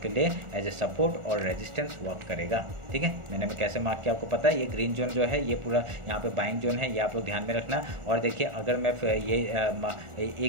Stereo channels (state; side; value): late; left; 1.4 ms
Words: के लिए एज ए सपोर्ट और रेजिस्टेंस वर्क करेगा, ठीक है। मैंने कैसे मार्क किया आपको पता है। ये ग्रीन जोन जो है ये पूरा यहाँ पे बाइंग जोन है, ये आप लोग ध्यान में रखना। और देखिए अगर मैं ये